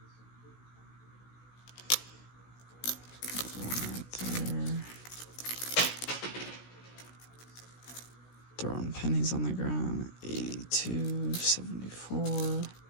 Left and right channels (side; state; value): right; late; 16 ms